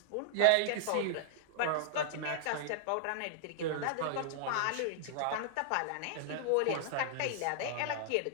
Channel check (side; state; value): both; different; correlation -0.01